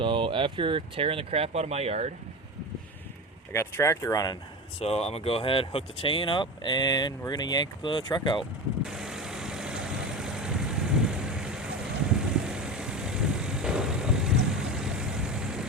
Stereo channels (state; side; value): normal; both; correlation 0.25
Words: after tearing the crap out of my yard, I got the tractor running. So I'm gonna go ahead, hook the chain up, and we're gonna yank the truck out.